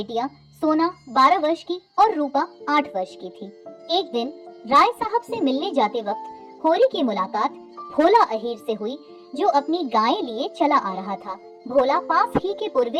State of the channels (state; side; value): identical; both; correlation 1.00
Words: सोना 12 वर्ष की और रूपा 8 वर्ष की थी। एक दिन राय साहब से मिलने जाते वक्त होरी की मुलाकात भोला अहीर से हुई, जो अपनी गायें लिए चला आ रहा था। भोला पास ही के